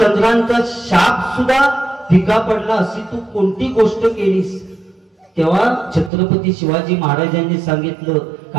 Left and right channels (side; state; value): left; drops out; at 6.1 s